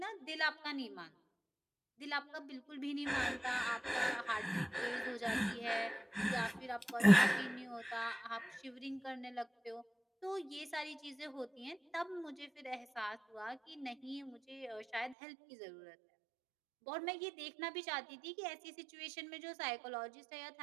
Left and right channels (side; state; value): left; drops out; at 15.2 s